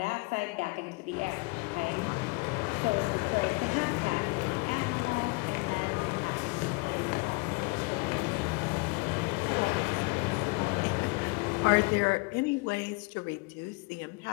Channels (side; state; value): right; quieter; 28.2 dB